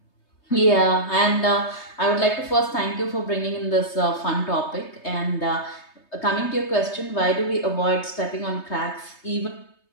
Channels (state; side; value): late; right; 3.3 ms